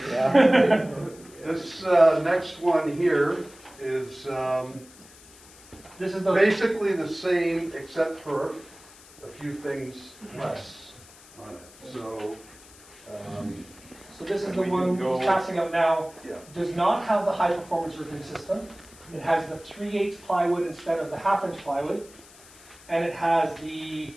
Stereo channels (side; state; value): left; noise; hiss, 22 dB below the sound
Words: Yeah. This next one here is This is the, basically the same except for a few things less on it. So so this is the we one can go- that's passing out now. yeah. Does not have the high performance roofing system. It has the 3/8 plywood instead of the 1/2 inch plywood. And it has the